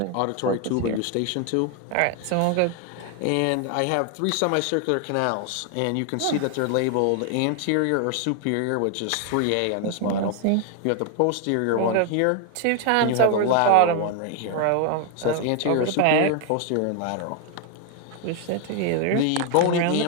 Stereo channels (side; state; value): both; different; correlation 0.00